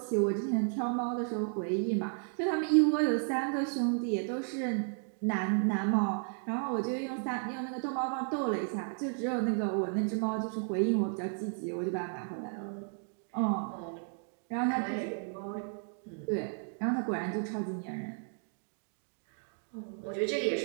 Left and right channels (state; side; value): silent; left; 55 dB below the other